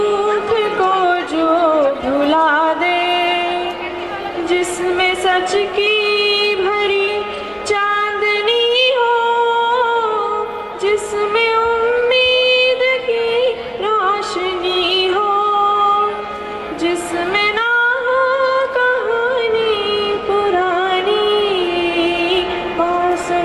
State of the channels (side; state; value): both; identical; correlation 1.00